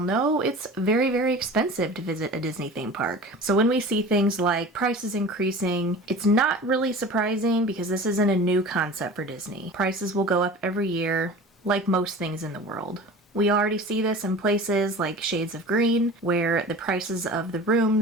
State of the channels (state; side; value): normal; both; correlation 0.38